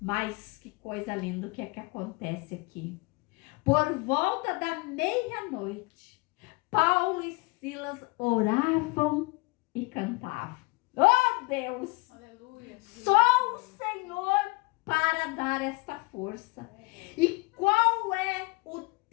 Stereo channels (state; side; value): quieter; right; 26.8 dB